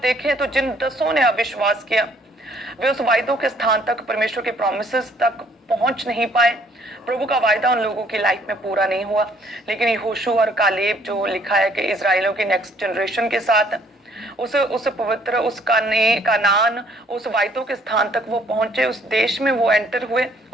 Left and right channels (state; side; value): normal; both; correlation 0.63